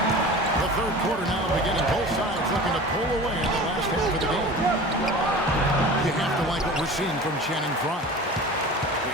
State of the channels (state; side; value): normal; both; correlation 0.37